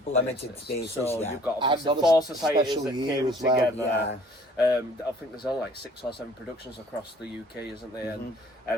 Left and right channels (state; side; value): normal; both; correlation 0.54